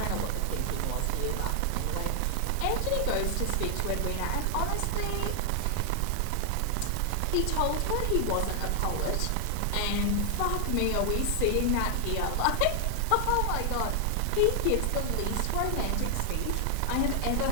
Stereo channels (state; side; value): different; both; correlation 0.00